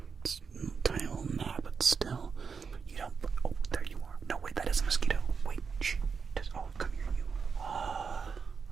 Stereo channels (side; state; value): left; quieter; 5.7 dB